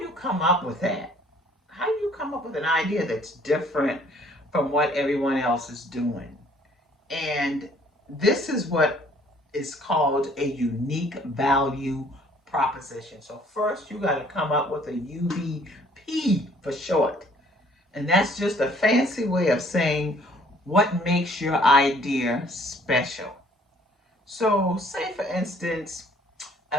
you come up with that? How do you come up with an idea that's different from what everyone else is doing? And this is what is called a unique value proposition. So first you got to come up with a UVP for short. And that's just a fancy way of saying what makes your idea special. So, say for instance,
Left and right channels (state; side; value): normal; both; correlation 0.59